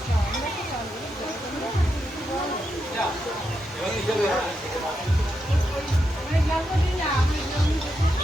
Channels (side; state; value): both; normal; correlation 0.84